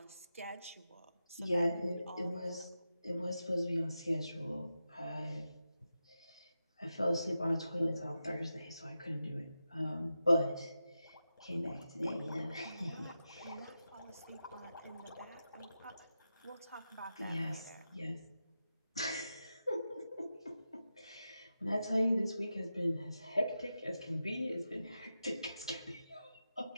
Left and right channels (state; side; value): inverted; both; correlation -0.90